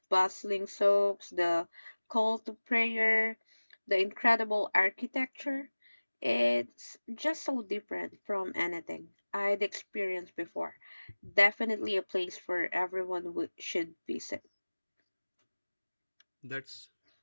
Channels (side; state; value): both; inverted; correlation -1.00